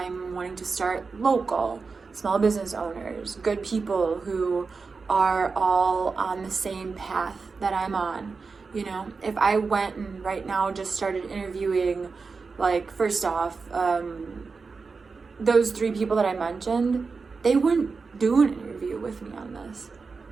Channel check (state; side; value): quieter; left; 4.6 dB